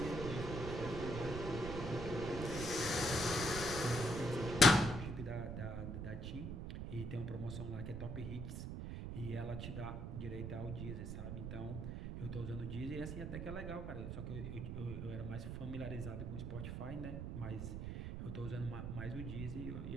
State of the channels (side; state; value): right; noise; rumble, 4 dB below the sound